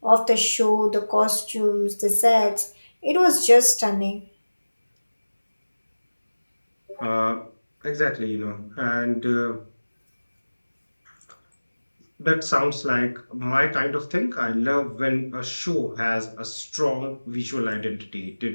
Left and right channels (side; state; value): both; inverted; correlation -1.00